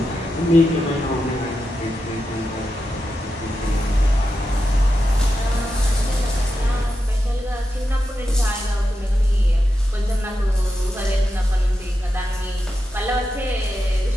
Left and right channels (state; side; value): normal; both; correlation 0.88